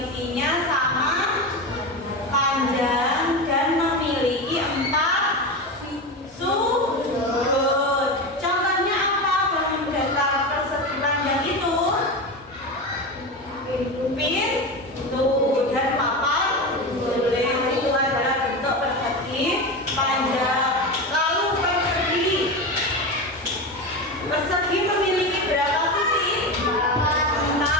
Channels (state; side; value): normal; both; correlation 0.21